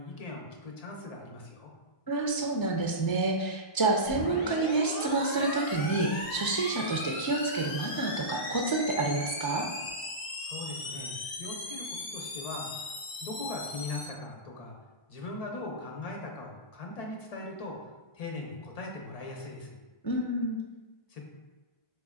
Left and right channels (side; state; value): right; late; 1.0 ms